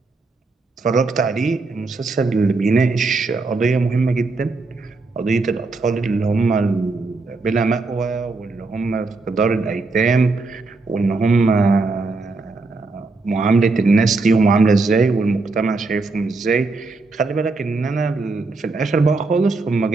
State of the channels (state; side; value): quieter; left; 3.7 dB